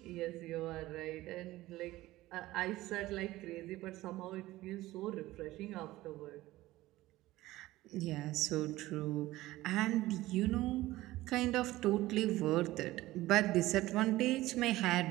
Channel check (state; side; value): quieter; left; 17.2 dB